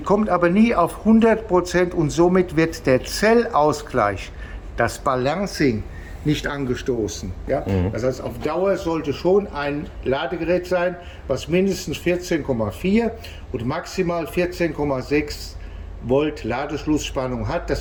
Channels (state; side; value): identical; both; correlation 1.00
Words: aber nie auf 100% und somit wird der Zellausgleich, das Balancing, nicht angestoßen. Ja? Das heißt, auf Dauer sollte schon ein Ladegerät sein, was mindestens 14,4 und maximal 14,6 Volt Ladeschlussspannung hat. Das